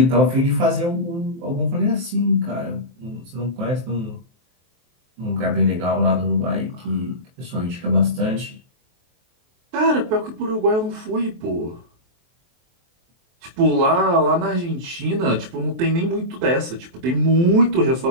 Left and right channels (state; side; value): late; left; 23 ms